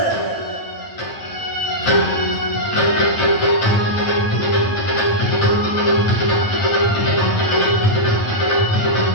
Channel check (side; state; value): right; late; 9.1 ms